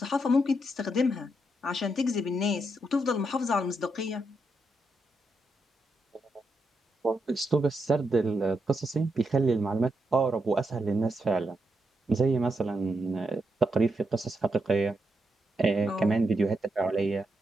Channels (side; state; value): both; normal; correlation 0.82